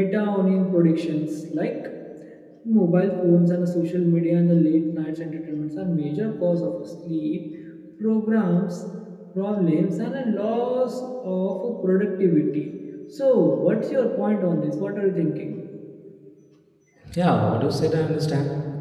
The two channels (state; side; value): identical; both; correlation 1.00